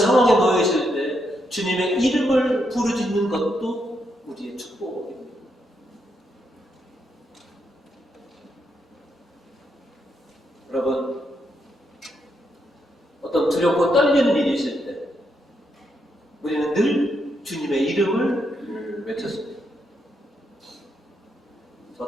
놓여 있을 때 주님의 이름을 부르짖는 것도 우리의 축복입니다. 여러분, 어떤 두렵고 떨리는 일이 있을 때 우리는 늘 주님의 이름을 외쳤습니다.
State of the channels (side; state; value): both; normal; correlation 0.79